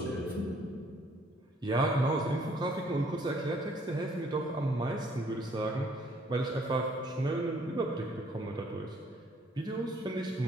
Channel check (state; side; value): normal; both; correlation 0.63